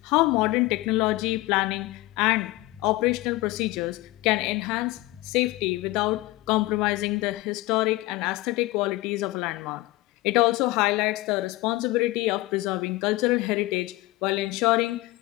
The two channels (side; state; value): right; quieter; 19.7 dB